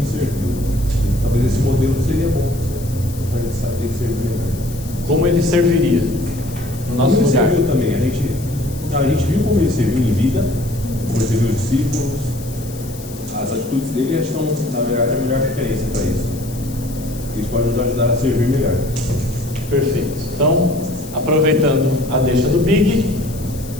serviu. Talvez esse modelo seria bom para ele saber servir melhor. Como ele serviria no nosso Como ele lugar? serviu também, a gente viu como ele serviu em vida, como ele serviu os discípulos, as atitudes dele acho que são, na verdade, a melhor referência para isso. Eles podem nos ajudar a servir melhor. Perfeito. Então, aproveitando a deixa do Big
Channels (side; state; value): left; noise; hiss, 17 dB below the sound